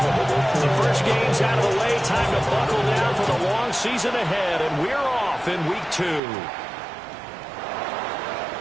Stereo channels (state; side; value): drops out; left; at 6.2 s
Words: The first game's out of the way. Time to buckle down for the long season ahead, and we're off in week 2.